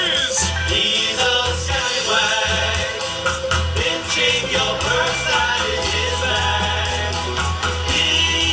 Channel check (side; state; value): both; identical; correlation 1.00